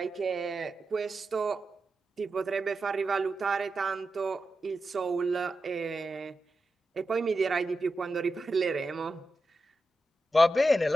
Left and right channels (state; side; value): normal; both; correlation 0.90